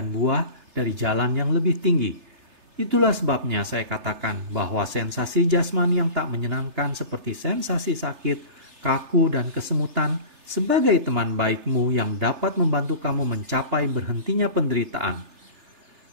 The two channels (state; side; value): late; left; 3.3 ms